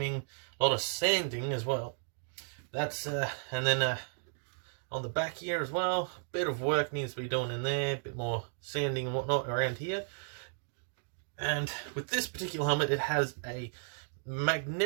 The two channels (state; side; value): silent; left; digital silence